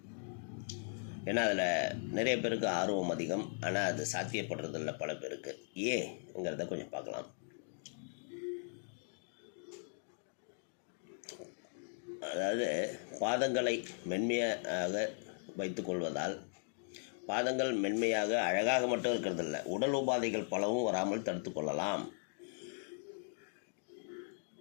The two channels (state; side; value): silent; right; 52 dB below the other